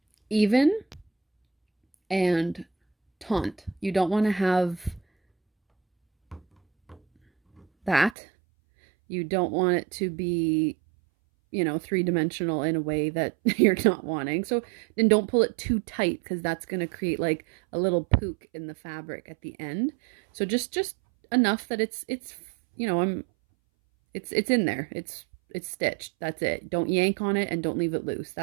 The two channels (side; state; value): left; drops out; at 8.2 s